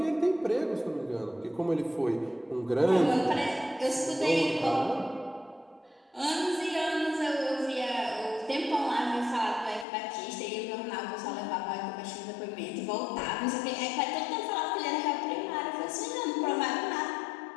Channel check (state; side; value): drops out; right; at 9.9 s